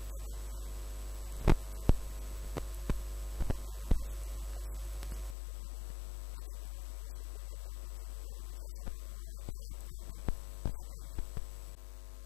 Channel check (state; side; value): drops out; right; at 5.4 s